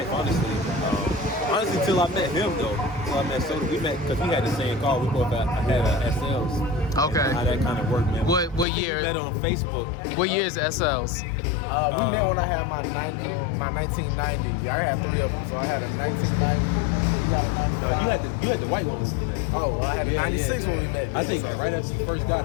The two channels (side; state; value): right; drops out; at 8.7 s